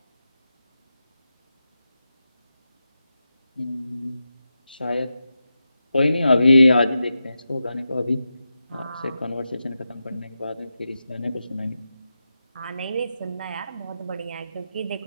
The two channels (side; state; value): both; inverted; correlation -0.90